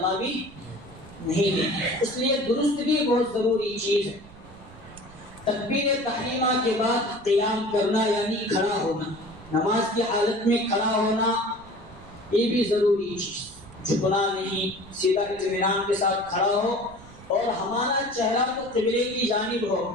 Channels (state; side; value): noise; right; rumble, 20 dB below the sound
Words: بھی نہیں دے. اس لیے درست بھی بہت ضروری چیز ہے. تکبیر تحریمہ کے بعد قیام کرنا یعنی کھڑا ہونا، نماز کی حالت میں کھڑا ہونا یہ بھی ضروری چیز. جھکنا نہیں، سیدھا اطمینان کے ساتھ کھڑا ہو اور ہمارا چہرہ تو قبلے کی جانب ہو